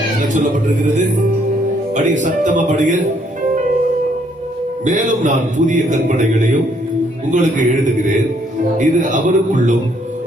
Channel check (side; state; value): both; normal; correlation 0.68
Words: என்ன சொல்லப்பட்டிருக்கிறது? படிங்க, சத்தமா படிங்க. மேலும் நான் புதிய கற்பனைகளையும் உங்களுக்கு எழுதுகிறேன். இது அவருக்குள்ளும்